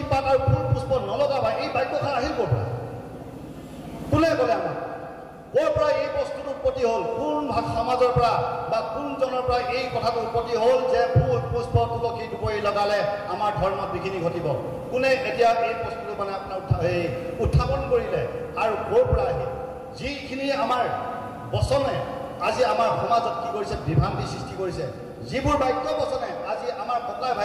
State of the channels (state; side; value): identical; both; correlation 1.00